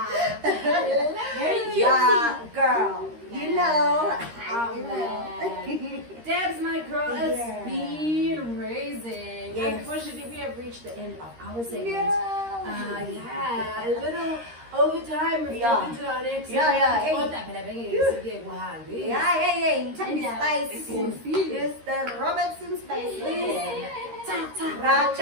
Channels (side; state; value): left; late; 13 ms